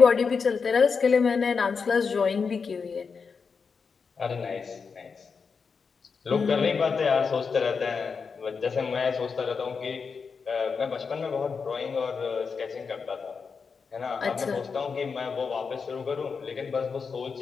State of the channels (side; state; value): right; quieter; 5.4 dB